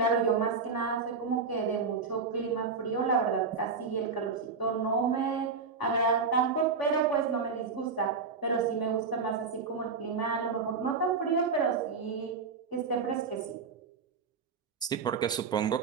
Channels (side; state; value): left; quieter; 5.0 dB